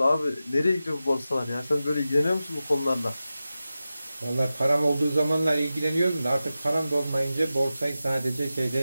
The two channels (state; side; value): inverted; both; correlation -0.93